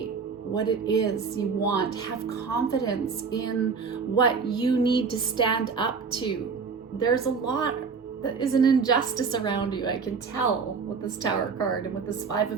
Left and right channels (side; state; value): left; quieter; 5.3 dB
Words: what it is you want. Have confidence in what you need to stand up to. There's a lot that is an injustice around you. I can tell with this Tower card and with this 5